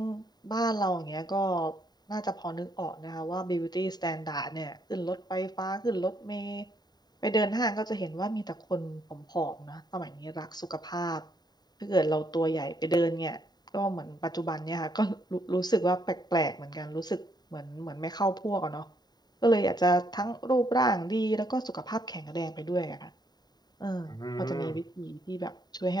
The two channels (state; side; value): late; right; 0.20 ms